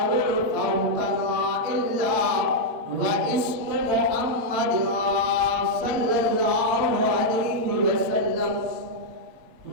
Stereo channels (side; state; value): left; late; 8.7 ms